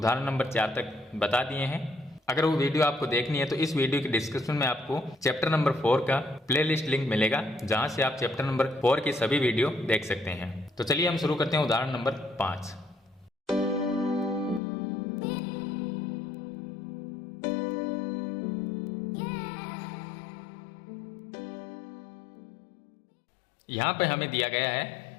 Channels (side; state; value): right; drops out; at 14.6 s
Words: नंबर 4 तक बता दिए हैं। अगर वो वीडियो आपको देखनी है तो इस वीडियो के डिस्क्रिप्शन में आपको चैप्टर नंबर 4 का प्लेलिस्ट लिंक मिलेगा, जहां से आप चैप्टर नंबर 4 की सभी वीडियो देख सकते हैं। तो चलिए हम शुरू करते हैं उदाहरण नंबर 5। यहां पे हमें दिया गया है